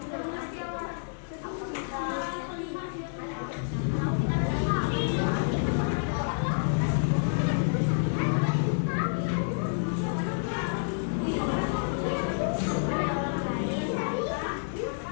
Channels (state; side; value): silent; right; 59 dB below the other